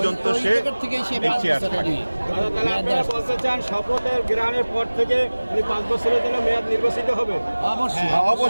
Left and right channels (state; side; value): inverted; both; correlation -1.00